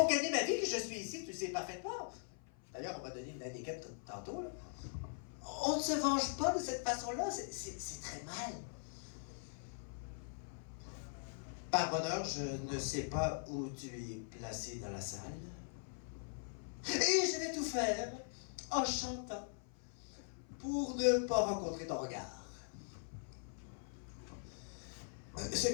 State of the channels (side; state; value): right; silent; 50 dB below the other